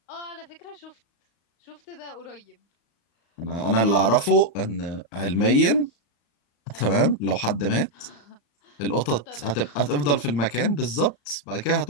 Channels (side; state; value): right; late; 35 ms